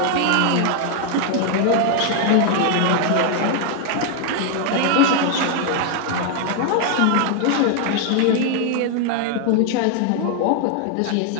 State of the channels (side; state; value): both; different; correlation 0.00